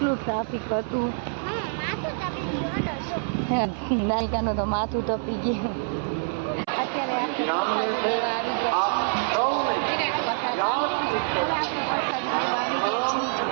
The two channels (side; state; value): left; silent; 61 dB below the other